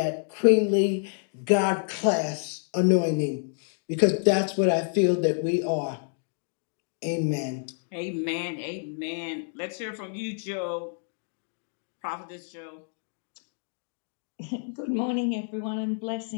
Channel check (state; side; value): silent; right; digital silence